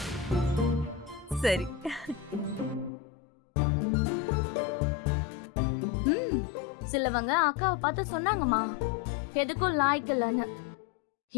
சரி. சிலவங்க அக்காவை பார்த்து சொன்னாங்கம்மா, எதுக்கும் லாய்க்கலன்னு.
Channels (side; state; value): right; drops out; at 2.9 s